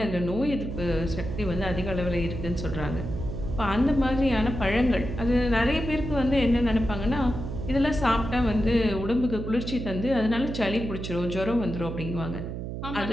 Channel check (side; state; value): right; noise; hum, 6 dB below the sound